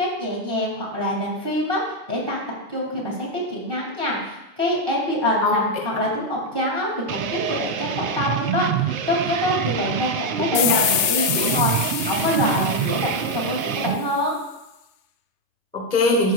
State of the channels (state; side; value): late; left; 1.2 ms